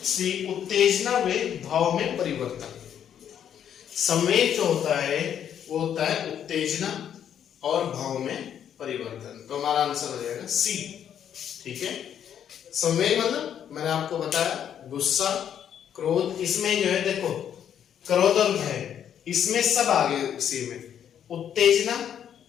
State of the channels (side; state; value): right; quieter; 9.3 dB